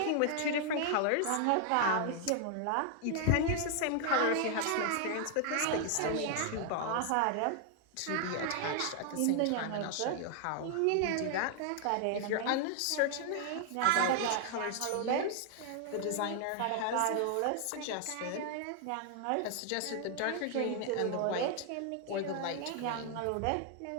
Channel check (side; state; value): both; different; correlation 0.00